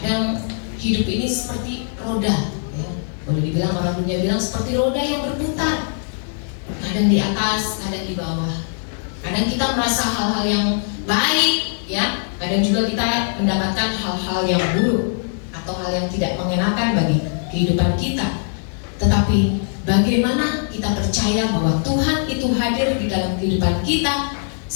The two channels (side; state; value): right; silent; 65 dB below the other